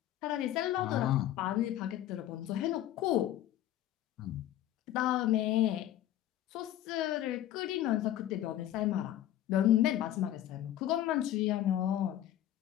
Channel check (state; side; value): quieter; right; 12.6 dB